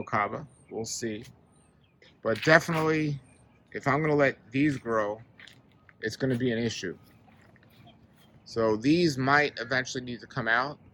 We'll see. But definitely, if I'm going to let these grow, it's going to be an issue. So these might eventually need to come out,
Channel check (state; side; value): identical; both; correlation 1.00